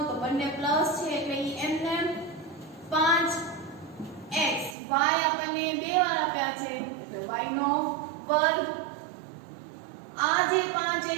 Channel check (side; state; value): left; drops out; at 4.8 s